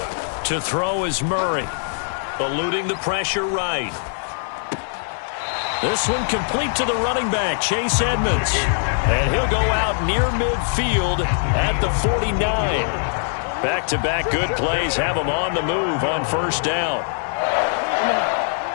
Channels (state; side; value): silent; right; digital silence